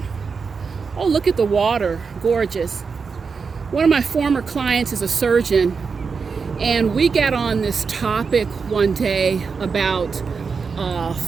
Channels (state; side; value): quieter; left; 5.3 dB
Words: Oh, look at the water, gorgeous. One of my former clients is a surgeon, and we got on this topic one day about